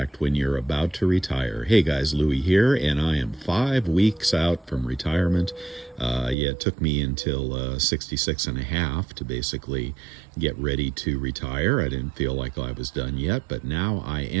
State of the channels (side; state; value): left; drops out; at 6.4 s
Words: when you're about to retire. Hey guys, Louie here, and I am 5 weeks out from retirement. It took me until 66 and a half to basically get ready to retire. I didn't feel like I was done yet, but now I